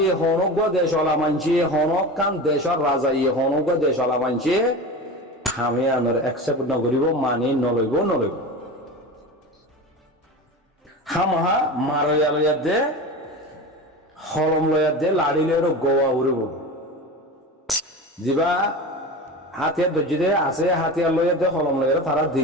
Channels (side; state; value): both; normal; correlation 0.29